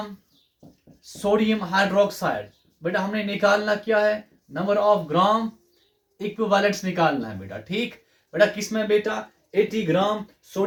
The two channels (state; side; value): identical; both; correlation 1.00